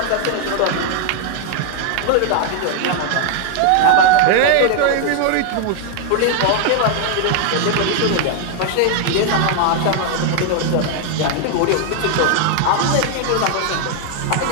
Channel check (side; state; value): both; different; correlation 0.00